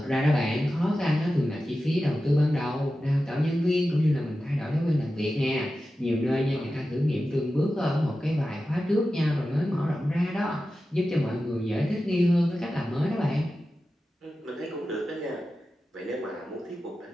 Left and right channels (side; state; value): both; normal; correlation 0.93